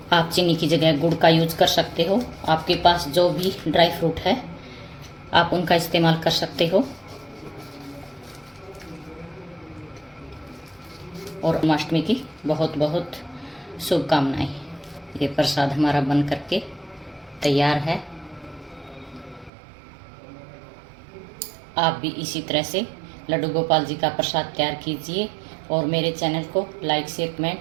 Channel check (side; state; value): left; drops out; at 19.5 s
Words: आप चीनी की जगह गुड़ का यूज कर सकते हो। आपके पास जो भी ड्राई फ्रूट है आप उनका इस्तेमाल कर सकते हो। और जन्माष्टमी की बहुत बहुत शुभकामनाएं। ये प्रसाद हमारा बन करके तैयार है। आप भी इसी तरह से लड्डू गोपाल जी का प्रसाद तैयार कीजिए और मेरे चैनल को लाइक शेयर